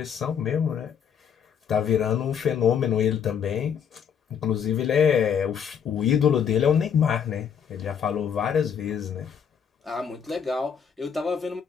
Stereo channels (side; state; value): right; quieter; 7.6 dB